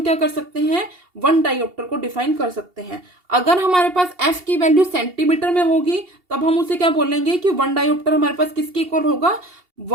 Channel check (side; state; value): left; late; 2.8 ms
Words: क्या कर सकते हैं, 1 डायोप्टर को डिफाइन कर सकते हैं। अगर हमारे पास f की वैल्यू सेंटीमीटर में होगी तब हम उसे क्या बोलेंगे कि 1 डायोप्टर हमारे पास किसके इक्वल होगा,